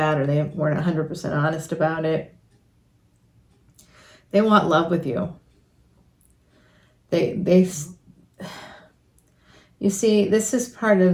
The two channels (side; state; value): both; identical; correlation 1.00